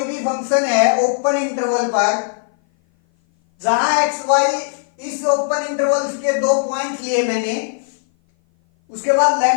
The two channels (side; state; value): right; silent; 57 dB below the other